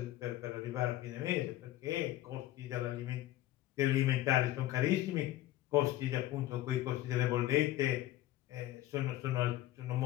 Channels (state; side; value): quieter; right; 14.8 dB